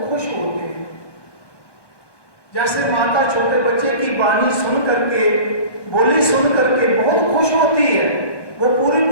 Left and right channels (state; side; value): late; right; 1.1 ms